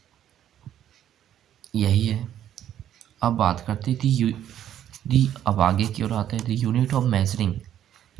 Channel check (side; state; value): left; quieter; 10.8 dB